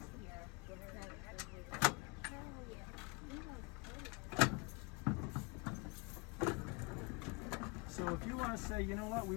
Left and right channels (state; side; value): quieter; right; 29.1 dB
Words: So if you want to say, you know what, we